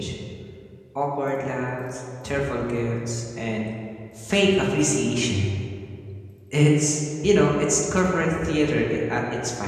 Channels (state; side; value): identical; both; correlation 1.00